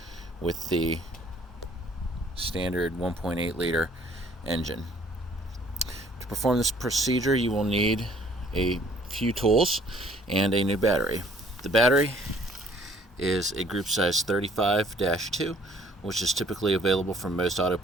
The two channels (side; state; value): both; normal; correlation 0.59